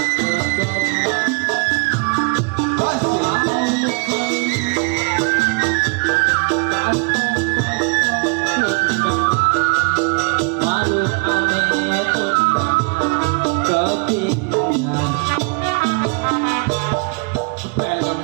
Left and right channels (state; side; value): quieter; left; 32.6 dB